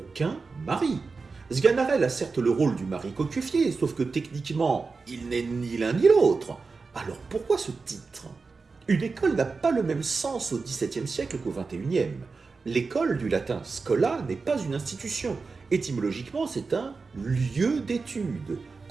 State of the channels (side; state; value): left; quieter; 4.4 dB